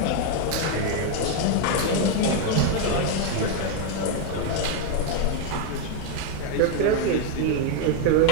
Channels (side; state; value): both; different; correlation 0.01